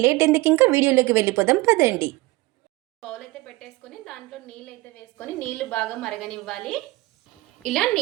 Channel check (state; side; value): quieter; left; 20.8 dB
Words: లేట్ ఎందుకు, ఇంకా వీడియోలోకి వెళ్ళిపోదాం పదండి. బౌల్ అయితే పెట్టేసుకొని దాంట్లో నీళ్ళు అయితే వేసుకొని నీళ్లు బాగా మరగనివ్వాలి. ఇలా